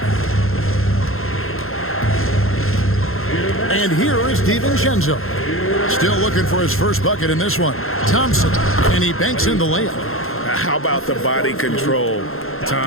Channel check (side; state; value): right; late; 0.61 ms